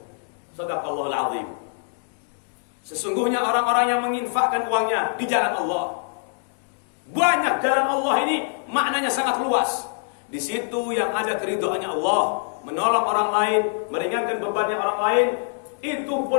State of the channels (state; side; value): silent; right; digital silence